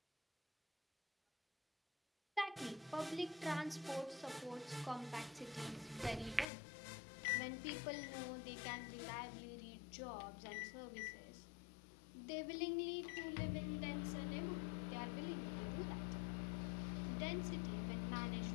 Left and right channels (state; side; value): drops out; right; at 6.5 s